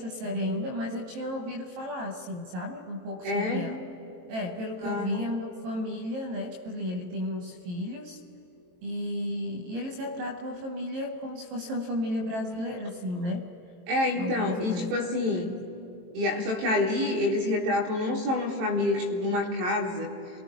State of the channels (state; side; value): late; left; 23 ms